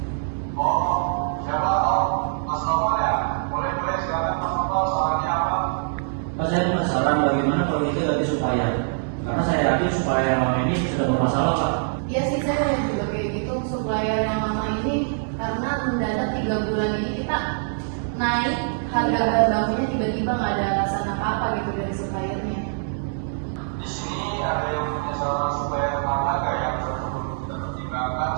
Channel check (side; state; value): left; silent; digital silence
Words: Oh, siapa? Oh, Mas Novel ya? Boleh silakan Mas Novel, sarannya apa? Pak, saya punya saran bagaimana kalau kita ganti supplier. Karena saya yakin supplier yang lama ini sudah bermasalah, Pak. Iya sih, saya lihat juga kayak gitu. Supplier yang lama ini karena mendadak 3 bulan ini kita naik harga bahan bakunya, tiba-tiba nggak ada alasan apa-apa gitu dari suppliernya. Di sini ada yang punya saran supaya harga yang perlu kita pertimbangkan